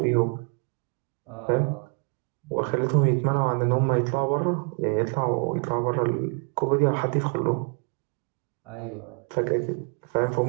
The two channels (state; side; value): quieter; left; 38.7 dB